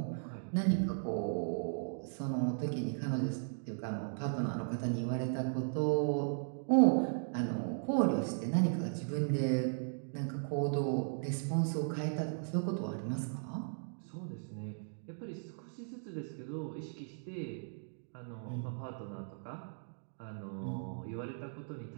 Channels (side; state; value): left; silent; digital silence